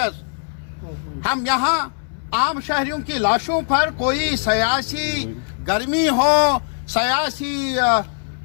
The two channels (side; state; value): right; silent; digital silence